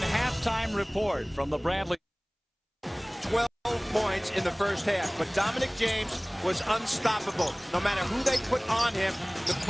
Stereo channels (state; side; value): identical; both; correlation 1.00